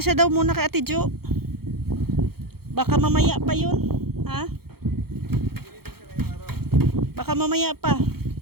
siya daw muna kay Ate Jo. Baka mamaya pa yun. Ha? Baka mamaya pa.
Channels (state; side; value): late; left; 0.95 ms